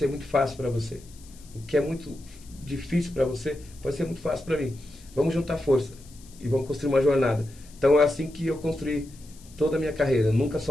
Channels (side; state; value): left; noise; hiss, 24 dB below the sound